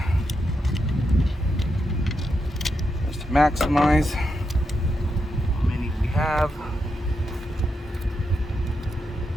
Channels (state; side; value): normal; both; correlation 0.84